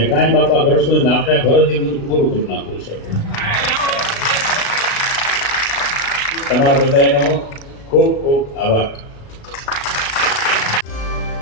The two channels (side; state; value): right; late; 36 ms